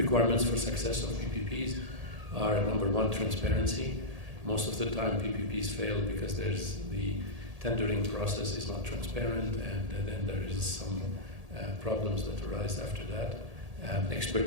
for success of PPPs are, number one, transparency. Most of the time PPPs fail because the tendering process is not transparent, and then there is some problems that arise after that.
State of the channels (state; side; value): late; left; 1.8 ms